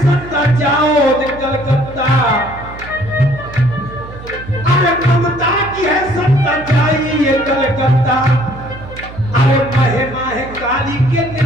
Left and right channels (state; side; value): noise; right; hum, 15 dB below the sound